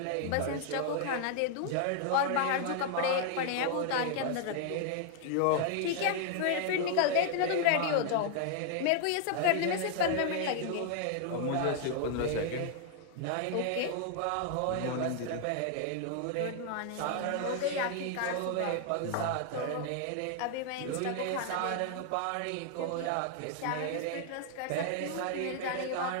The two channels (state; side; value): different; both; correlation 0.00